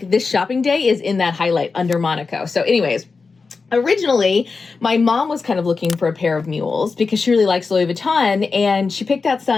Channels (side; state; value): right; quieter; 4.5 dB